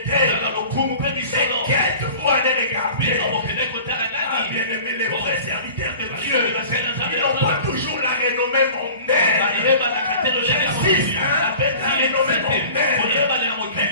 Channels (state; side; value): inverted; both; correlation -0.43